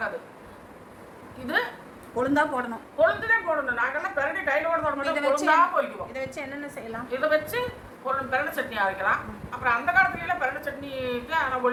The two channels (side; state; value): both; identical; correlation 1.00